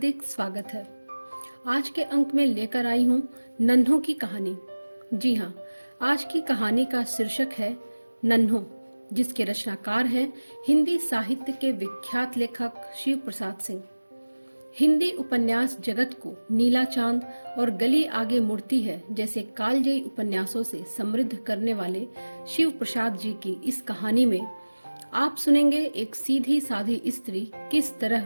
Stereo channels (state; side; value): inverted; both; correlation -1.00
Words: स्वागत है। आज के अंक में लेकर आई हूँ नन्हों की कहानी। जी हाँ, आज की कहानी का शीर्षक है नन्हों, जिसके रचनाकार हैं हिंदी साहित्य के विख्यात लेखक शिव प्रसाद सिंह। हिंदी उपन्यास जगत को नीला चांद और गली आगे मुड़ती है जैसे कालजयी उपन्यासों से समृद्ध करने वाले शिव प्रसाद जी की इस कहानी में आप सुनेंगे एक सीधी साधी स्त्री किस तरह